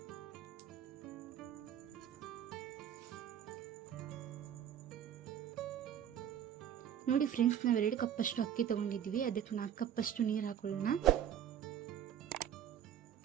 ನೋಡಿ ಫ್ರೆಂಡ್ಸ್, ನಾವು 2 ಕಪ್ಪಷ್ಟು ಅಕ್ಕಿ ತಗೊಂಡಿದ್ವಿ, ಅದಕ್ಕೆ 4 ಕಪ್ಪಷ್ಟು ನೀರು ಹಾಕೊಳ್ಳೋಣ.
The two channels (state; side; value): quieter; left; 9.7 dB